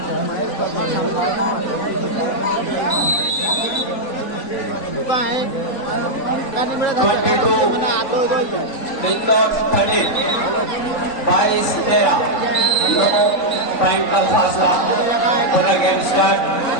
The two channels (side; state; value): right; late; 3.9 ms